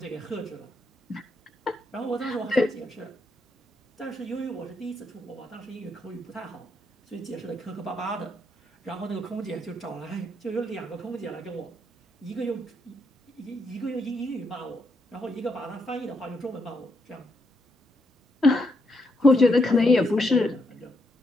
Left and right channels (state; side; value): normal; both; correlation 0.78